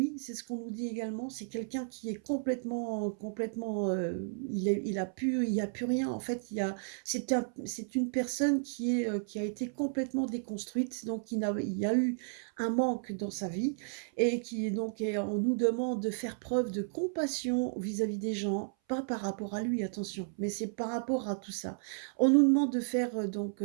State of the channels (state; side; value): silent; left; 56 dB below the other